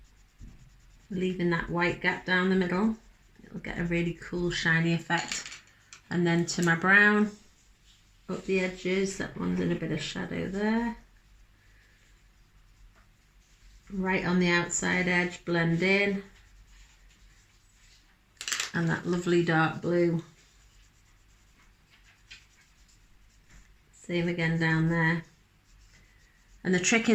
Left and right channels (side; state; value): both; identical; correlation 1.00